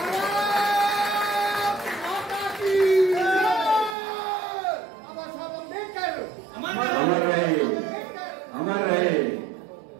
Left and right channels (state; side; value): drops out; left; at 4.0 s